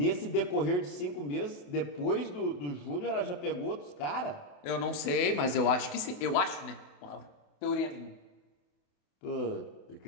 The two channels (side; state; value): right; late; 28 ms